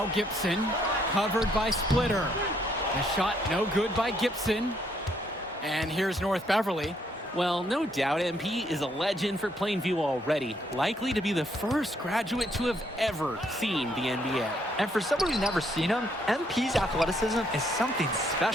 Gibson, covered by Splitter. The shot no good by Gibson. And here's North Beverly. Well, no doubt MP is a legend for Plainview already, likely to be the first graduate to have ever seen the NBA. And for someone who's never seen him, MP's athleticism is something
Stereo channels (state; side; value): normal; both; correlation 0.70